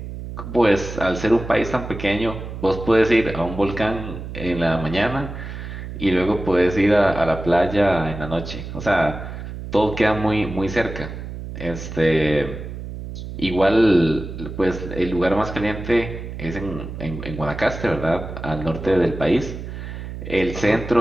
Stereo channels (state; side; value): noise; right; hum, 9 dB below the sound